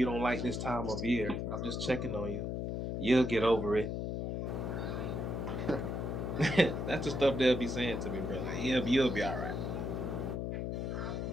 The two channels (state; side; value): noise; left; hum, 2 dB below the sound